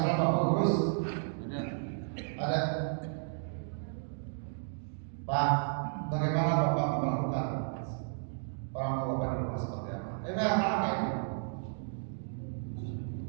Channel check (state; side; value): silent; left; digital silence